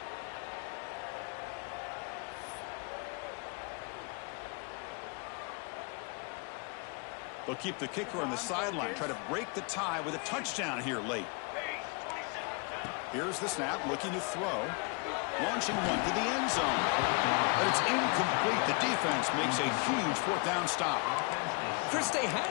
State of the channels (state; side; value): quieter; right; 33.0 dB